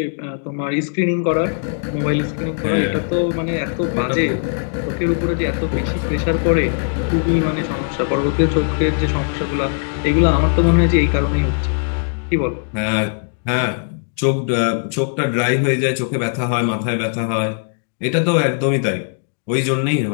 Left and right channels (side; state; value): right; silent; digital silence